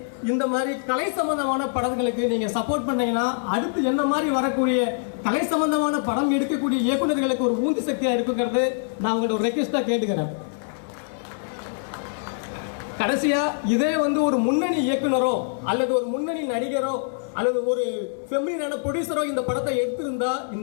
இந்த மாதிரி கலை சம்பந்தமான படங்களுக்கு நீங்க சப்போர்ட் பண்ணீங்கன்னா அடுத்து என்ன மாதிரி வரக்கூடிய கலை சம்பந்தமான படம் எடுக்கக்கூடிய இயக்குநர்களுக்கு ஒரு ஊந்து சக்தியா இருக்குங்கிறது நான் உங்களோட ஒரு ரெக்வெஸ்டா கேட்டுக்கிறேன். கடைசியா இதே வந்து ஒரு முன்னணி இயக்குனரோ அல்லது ஒரு முன்னணி நடிகரோ அல்லது ஒரு ஃபெமிலினான ப்ரொடியூசரோ இந்த படத்தை எடுத்திருந்தா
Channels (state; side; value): silent; right; digital silence